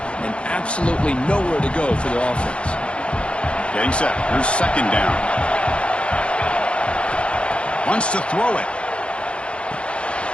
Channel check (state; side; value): late; right; 0.058 ms